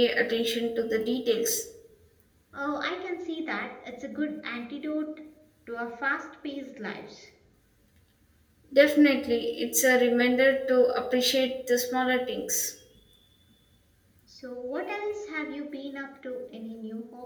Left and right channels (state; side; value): identical; both; correlation 1.00